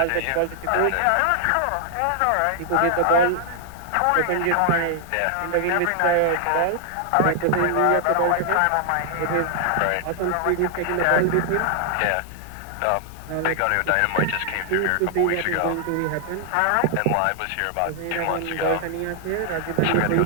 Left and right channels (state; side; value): different; both; correlation 0.00